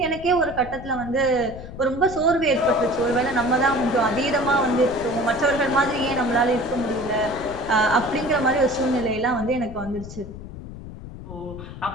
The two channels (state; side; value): noise; left; rumble, 12 dB below the sound